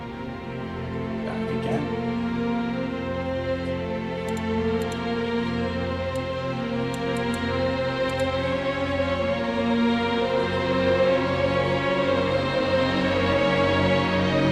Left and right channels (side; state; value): both; identical; correlation 1.00